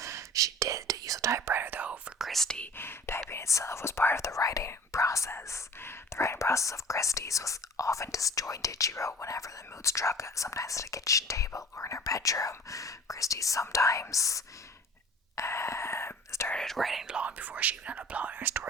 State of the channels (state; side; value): normal; both; correlation 0.43